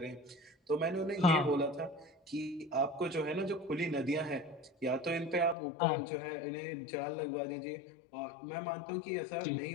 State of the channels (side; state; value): right; drops out; at 5.6 s